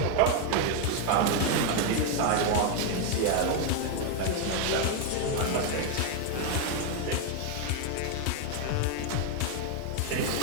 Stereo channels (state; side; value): different; both; correlation 0.01